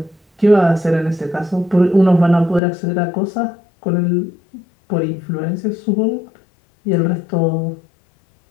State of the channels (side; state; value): right; drops out; at 2.6 s